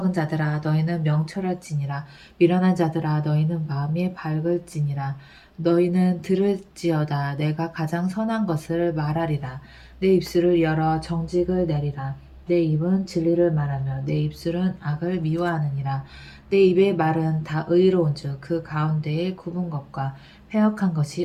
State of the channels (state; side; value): identical; both; correlation 1.00